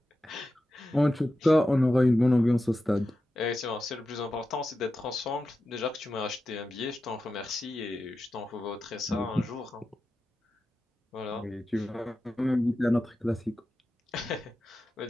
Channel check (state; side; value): normal; both; correlation 0.91